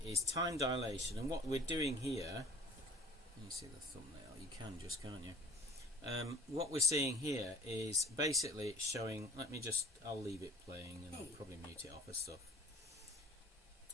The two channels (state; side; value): normal; both; correlation 0.46